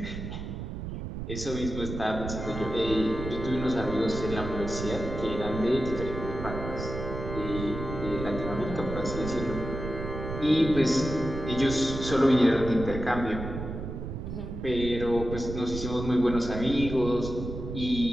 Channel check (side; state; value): right; noise; rumble, 6 dB below the sound